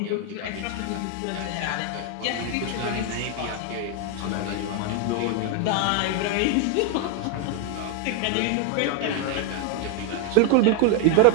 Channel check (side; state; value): both; different; correlation 0.00